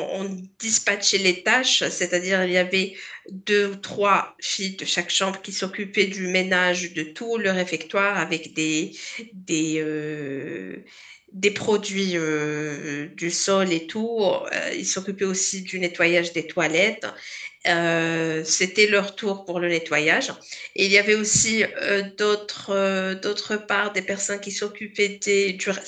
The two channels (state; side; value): identical; both; correlation 1.00